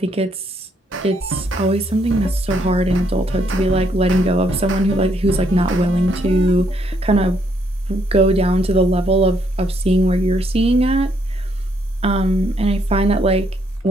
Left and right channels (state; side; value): normal; both; correlation 0.72